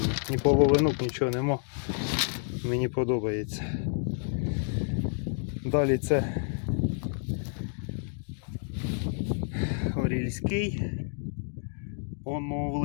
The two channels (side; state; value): right; silent; 56 dB below the other